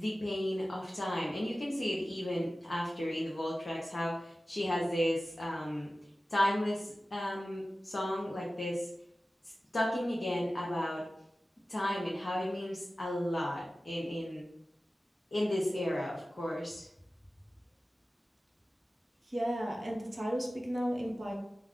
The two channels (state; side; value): normal; both; correlation 0.96